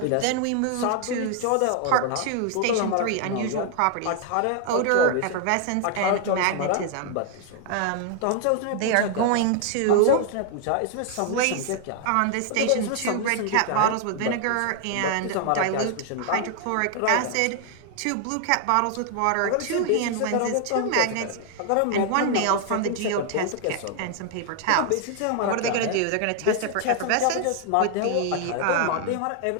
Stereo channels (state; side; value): different; both; correlation 0.00